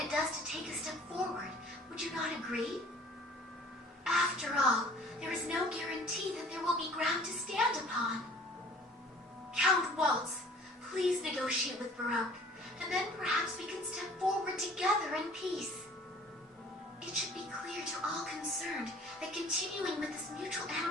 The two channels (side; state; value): both; normal; correlation 0.51